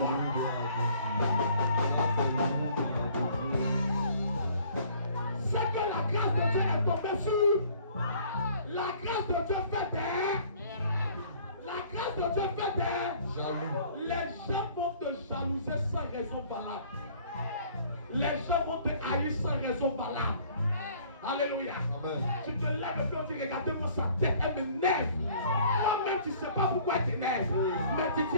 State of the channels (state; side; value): inverted; both; correlation -0.55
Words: C'est que la grâce de Dieu est tombée sur. La grâce de Dieu fait des. La grâce de Dieu fait des. Jaloux. Les gens vont te jalouser sans raison valable. Les gens vont te haïr sans raison valable. Alléluia. Amen. Tu te lèves et puis on dit, regardez-moi sa tête, elle m'énerve. Toi-même, tu ne sais pas pourquoi elle t'énerve. Mais tu dis,